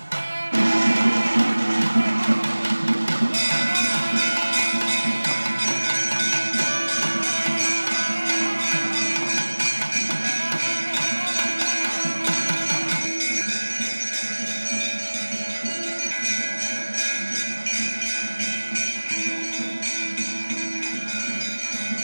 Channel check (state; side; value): inverted; both; correlation -1.00